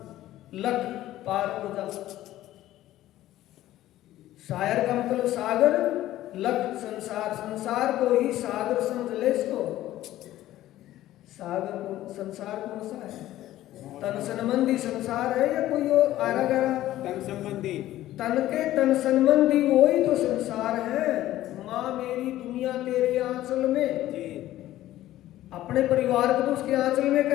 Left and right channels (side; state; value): right; quieter; 14.4 dB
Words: लख पार हो जा। सायर का मतलब सागर, लख संसार, संसार को ही सागर समझ ले। इसको सागर को, संसार कौन सा है? तन संबंधी संसार है या कोई और आरा गया? तन संबंधी, तन के तन संबंधी वही तो संसार है। माँ मेरी दुनिया तेरे आंचल में, जी अपने परिवार को तो उसके आंचल में